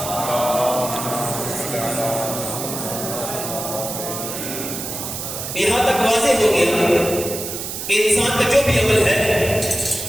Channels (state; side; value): noise; right; hiss, 6 dB below the sound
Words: یہاں تک واضح ہو گیا کہ انسان کا جو بھی عمل ہے,